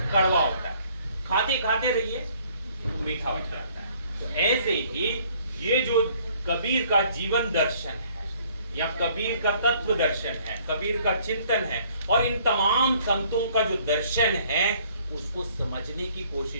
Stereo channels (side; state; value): both; inverted; correlation -0.60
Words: कड़वा होता है, खाते खाते रहिए, मीठा हो जाता है। तो ऐसे ही ये जो कबीर का जीवन दर्शन है, या कबीर का तत्व दर्शन है, कबीर का चिंतन है, और इन तमाम संतों का जो दर्शन है, उसको समझने की